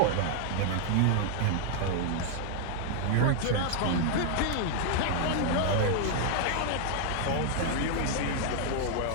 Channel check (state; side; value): different; both; correlation 0.00